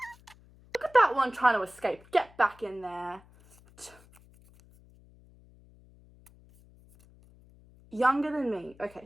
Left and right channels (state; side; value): noise; left; hum, 26 dB below the sound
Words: look at that one trying to escape. Get back in there. Younger than me. Okay,